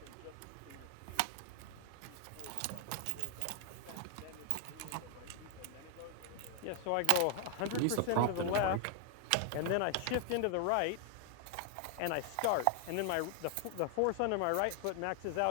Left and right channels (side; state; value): both; different; correlation 0.00